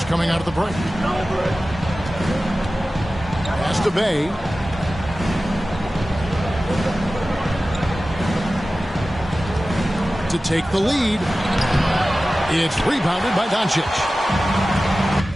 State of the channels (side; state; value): both; normal; correlation 0.95